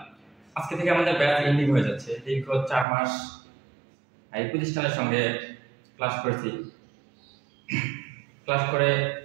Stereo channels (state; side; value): drops out; left; at 2.9 s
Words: আজকে থেকে আমাদের ব্যাচ এন্ডিং হয়ে যাচ্ছে। দীর্ঘ 4 মাস এই প্রতিষ্ঠানের সঙ্গে ক্লাস করেছি। ক্লাস করে